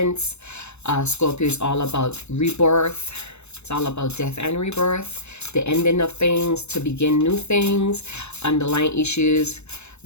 Scorpio is all about rebirth. It's all about death and rebirth, the ending of things to begin new things, underlying issues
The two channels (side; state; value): right; late; 0.81 ms